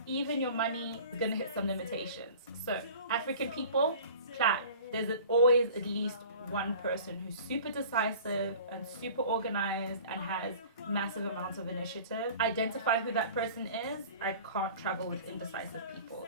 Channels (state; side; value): inverted; both; correlation -0.44